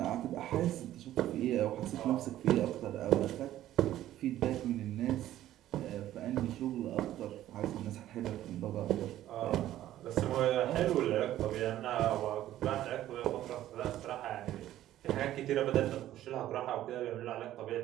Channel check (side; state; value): left; quieter; 13.3 dB